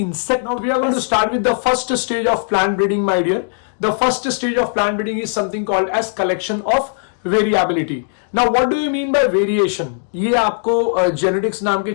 insect? Now we are going to start with the first stage of plant breeding, my dear. The first stage of plant breeding is something called as collection of variability. Now what do you mean by variation? ये आपको genetics नाम के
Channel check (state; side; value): silent; right; digital silence